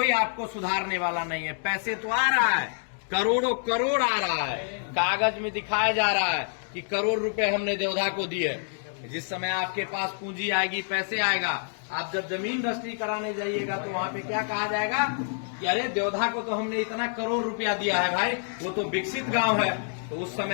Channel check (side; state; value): right; silent; digital silence